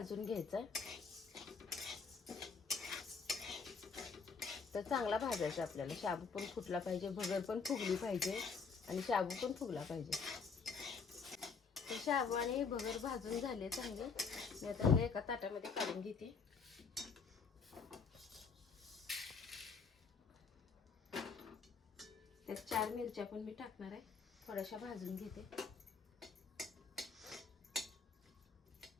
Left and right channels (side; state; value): right; quieter; 5.2 dB